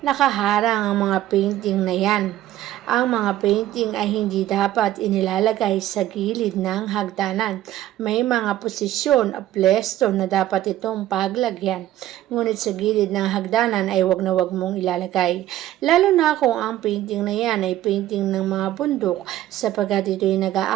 ang mga painting na yan. Ang mga painting ay hindi dapat inilalagay sa gilid ng hagdanan. May mga posisyon o pwesto na dapat itong paglagyan. Ngunit sa gilid ng hagdanan ay wag na wag mong ilalagay. Lalo na kung ang painting na yan ay painting ng mga bundok sapagkat ito'y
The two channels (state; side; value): quieter; left; 13.8 dB